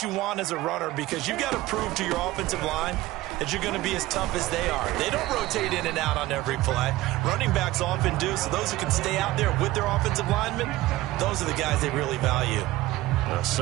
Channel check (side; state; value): left; quieter; 17.4 dB